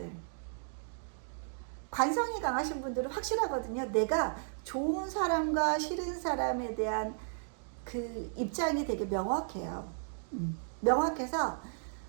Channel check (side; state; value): left; silent; digital silence